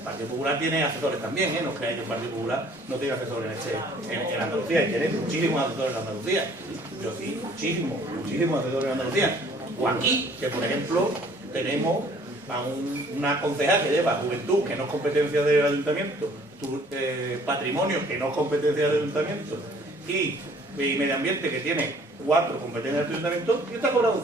Partido Popular tiene asesores también, no creáis que el Partido Popular no tiene asesores en Andalucía, y tiene muchísimos asesores en Andalucía. Yo sí, muchísimos asesores en Andalucía. O aquí, que por ejemplo tenemos a una concejal que lleva juventud, que no es competencia del ayuntamiento, patrimonio, que no es competencia del ayuntamiento, y medio ambiente, que tiene 4 competencias del ayuntamiento, y está cobrado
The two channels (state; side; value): normal; both; correlation 0.56